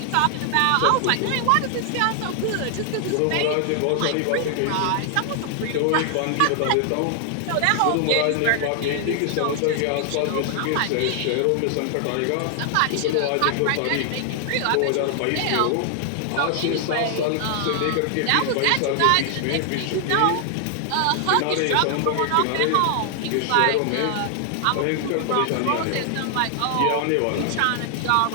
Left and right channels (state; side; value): different; both; correlation 0.00